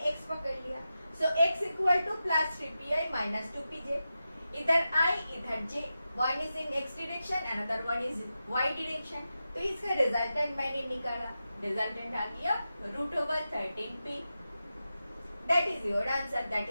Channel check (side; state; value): both; inverted; correlation -0.91